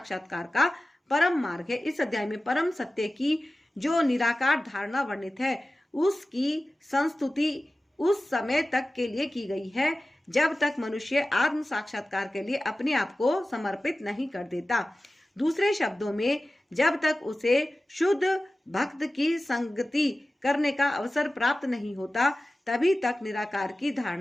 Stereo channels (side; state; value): both; normal; correlation 0.96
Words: का परम मार्ग है। इस अध्याय में परम सत्य की जो निराकार धारणा वर्णित है उसकी संस्तुति उस समय तक के लिए की गई है जब तक मनुष्य आत्म साक्षात्कार के लिए अपने आप को समर्पित नहीं कर देता। दूसरे शब्दों में, जब तक उसे शुद्ध भक्त की संगति करने का अवसर प्राप्त नहीं होता, तभी तक निराकार की